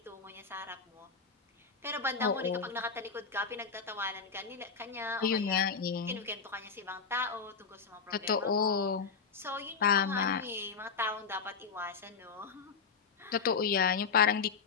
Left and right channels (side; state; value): right; quieter; 5.5 dB